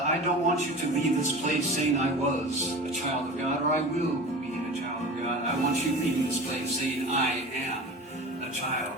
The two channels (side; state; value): both; normal; correlation 0.35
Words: I don't want you to leave this place saying I was a child of God or I will be a child of God. I want you leaving this place saying I am a